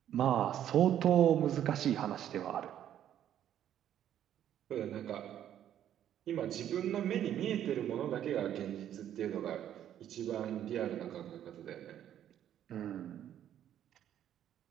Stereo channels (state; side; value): quieter; left; 10.7 dB